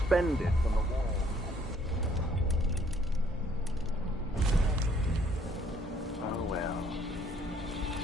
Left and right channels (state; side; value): normal; both; correlation 0.64